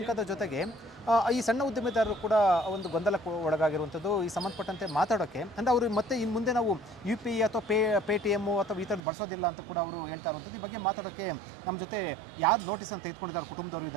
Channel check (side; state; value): left; drops out; at 9.0 s